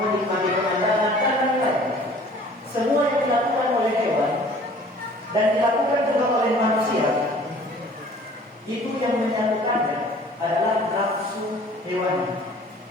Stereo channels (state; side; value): normal; both; correlation 0.51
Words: pemandangan, dan lain-lain. Semua yang dilakukan oleh hewan dan dilakukan juga oleh manusia, itu yang menyatukannya adalah nafsu hewani.